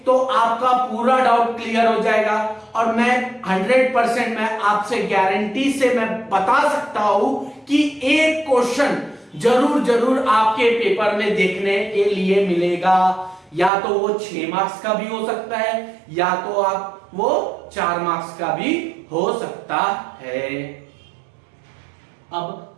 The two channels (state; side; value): drops out; left; at 13.7 s